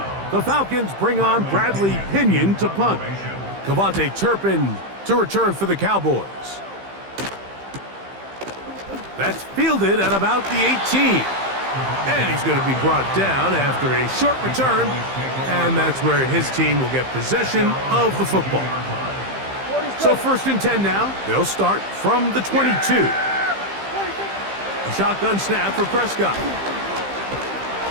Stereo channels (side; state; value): left; late; 15 ms